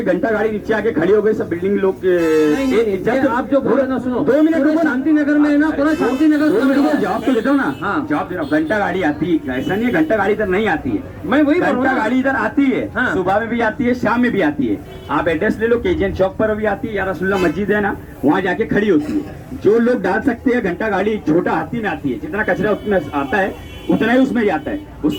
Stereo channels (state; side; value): identical; both; correlation 1.00